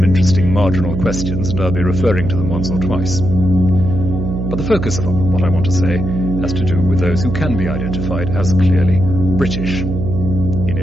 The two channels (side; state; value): right; noise; hum, 3 dB below the sound